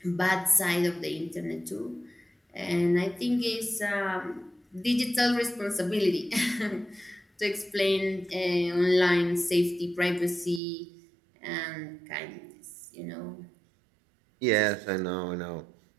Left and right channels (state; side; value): drops out; left; at 10.6 s